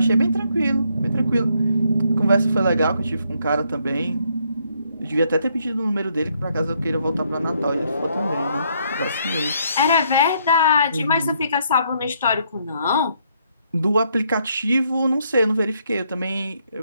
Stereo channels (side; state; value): both; inverted; correlation -0.72